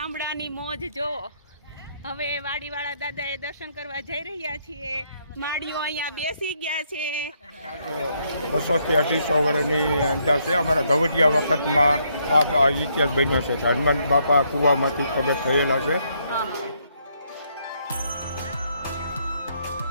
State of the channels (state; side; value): inverted; both; correlation -0.73